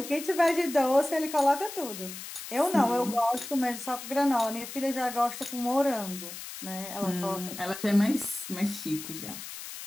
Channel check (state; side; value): noise; left; hiss, 10 dB below the sound